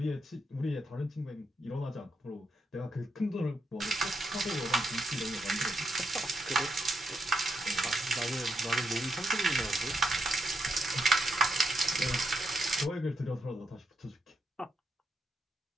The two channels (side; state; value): both; normal; correlation 0.81